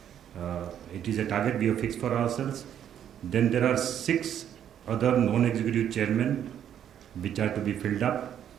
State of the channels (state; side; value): quieter; left; 9.8 dB